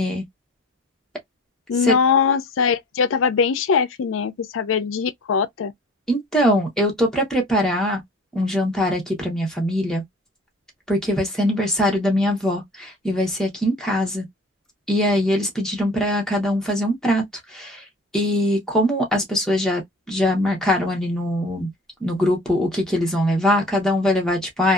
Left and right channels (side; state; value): both; normal; correlation 0.44